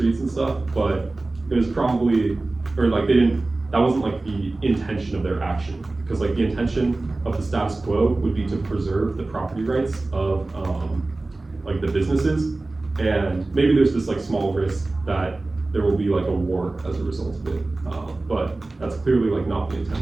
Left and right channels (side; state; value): left; quieter; 3.1 dB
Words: and stuff, but it was probably, or like they didn't, that wasn't like the intention of their action. Because like the intention of the status quo would be to preserve the property rights of like the businesses, and maybe there's this like small risk that there will be like a war as a result of it, but that's clearly like not the